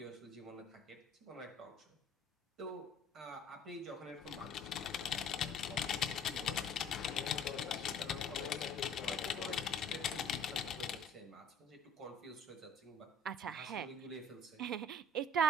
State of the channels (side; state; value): both; normal; correlation 0.51